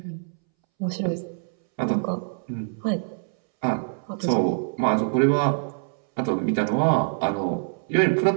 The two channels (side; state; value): left; silent; 62 dB below the other